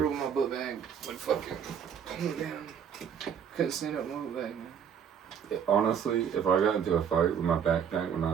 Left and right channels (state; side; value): quieter; left; 8.0 dB